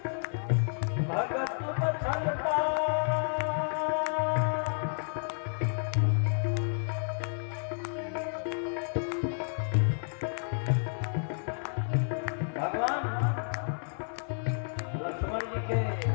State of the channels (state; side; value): silent; right; 57 dB below the other